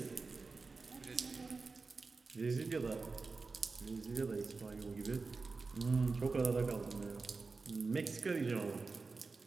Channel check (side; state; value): left; quieter; 4.1 dB